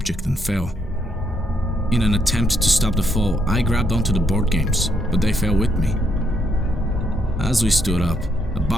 and fell. In an attempt to stop the fall, I grabbed onto the board games, but they fell with me. As we stood up, a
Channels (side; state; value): both; normal; correlation 0.75